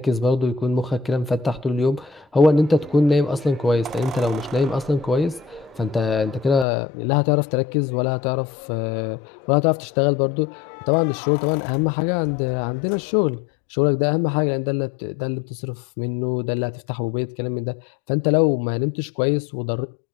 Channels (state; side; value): drops out; right; at 6.7 s